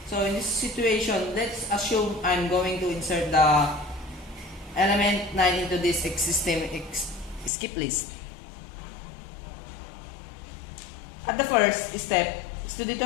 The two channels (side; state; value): right; drops out; at 7.5 s